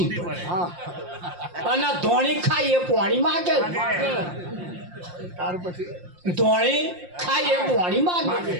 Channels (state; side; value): late; left; 5.7 ms